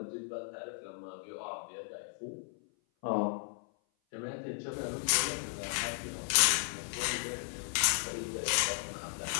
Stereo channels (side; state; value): right; silent; 54 dB below the other